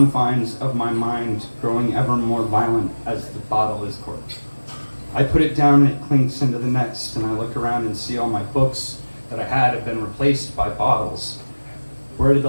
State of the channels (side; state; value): both; inverted; correlation -1.00